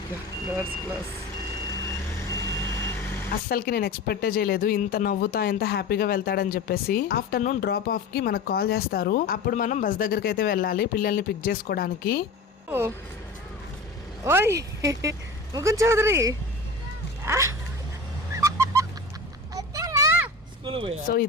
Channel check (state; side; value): quieter; right; 3.3 dB